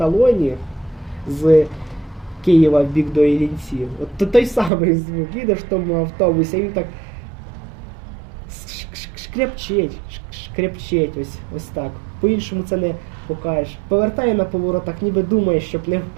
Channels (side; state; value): left; drops out; at 4.7 s